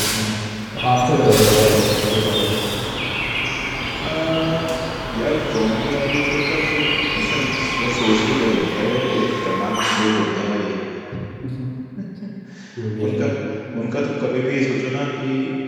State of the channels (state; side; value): identical; both; correlation 1.00